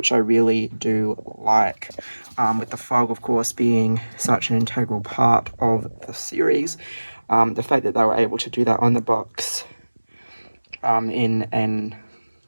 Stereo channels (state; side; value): inverted; both; correlation -1.00